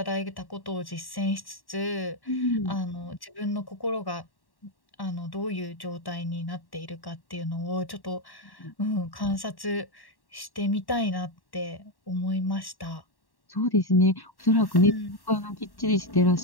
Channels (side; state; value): right; late; 1.1 ms